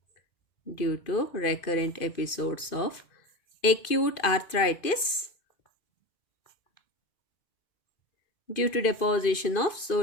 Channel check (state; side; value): late; right; 2.5 ms